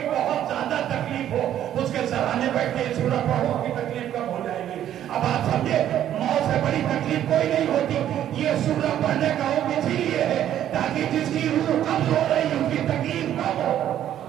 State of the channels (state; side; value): quieter; left; 11.2 dB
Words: بہت زیادہ تکلیف ہو اس کے سرانے بیٹھ کے سورہ پڑھو کی تکلیف کم ہو جائے گی. اب آپ سمجھے موت سے بڑی تکلیف کوئی نہیں ہوتی. یہ سورہ پڑھنے کا حکم اسی لیے ہے تاکہ جس کی روح قبض ہو رہی اس کی تکلیف کم ہو.